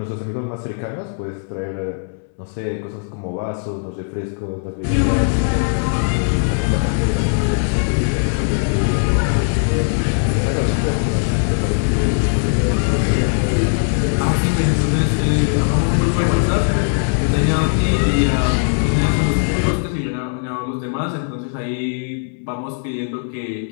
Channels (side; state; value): right; silent; 66 dB below the other